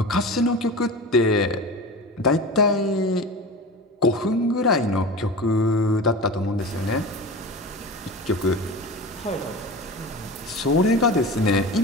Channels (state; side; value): normal; both; correlation 0.31